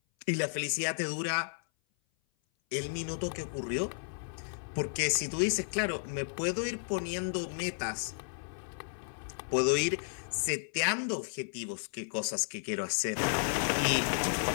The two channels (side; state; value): right; silent; 56 dB below the other